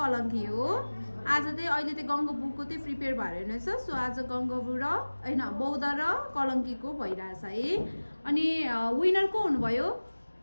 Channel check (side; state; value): both; inverted; correlation -1.00